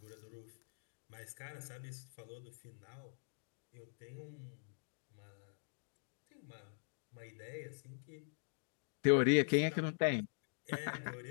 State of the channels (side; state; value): right; silent; digital silence